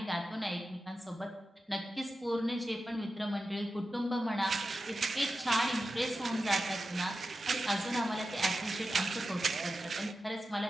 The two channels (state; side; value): normal; both; correlation 0.92